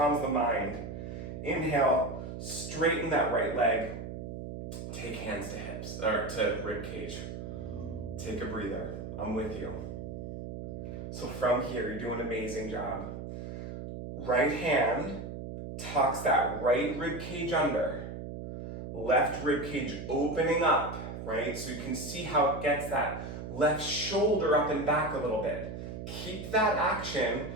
mind. Inhale, straighten that right leg. Take hands to hips, or to rib cage. Take a breather. I'm with you. So from here, you're doing an amazing job. Right hand tucks that right rib cage under. Left rib cage opening up, right? So you can see how it gets that left shoulder up and back a little bit. Keep that action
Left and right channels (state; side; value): noise; right; hum, 8 dB below the sound